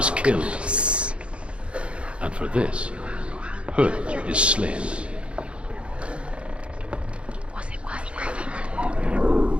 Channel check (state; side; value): late; left; 0.059 ms